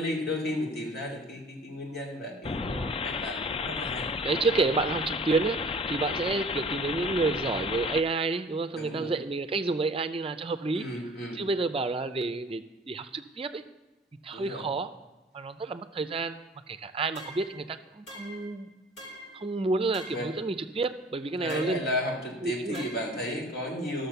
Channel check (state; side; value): normal; both; correlation 0.48